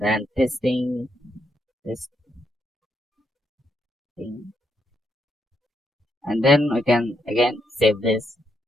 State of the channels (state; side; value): normal; both; correlation 0.78